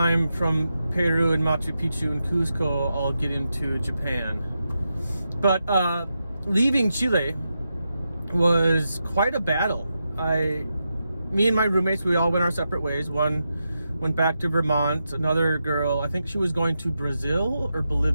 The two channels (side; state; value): both; inverted; correlation -0.87